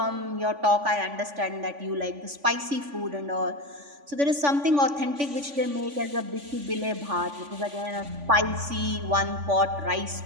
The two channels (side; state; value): left; late; 3.5 ms